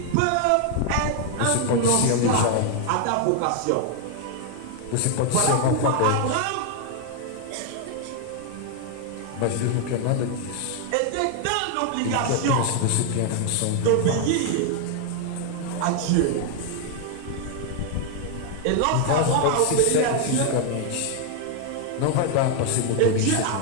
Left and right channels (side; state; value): both; different; correlation 0.00